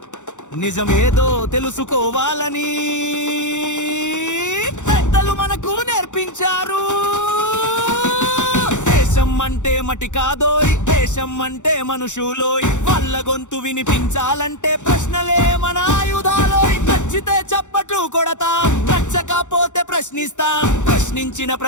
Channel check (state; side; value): late; right; 0.85 ms